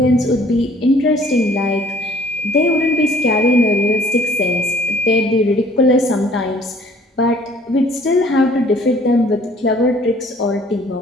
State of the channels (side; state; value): both; normal; correlation 0.56